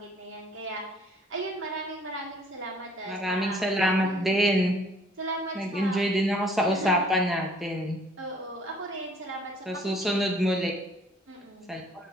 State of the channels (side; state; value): both; normal; correlation 0.58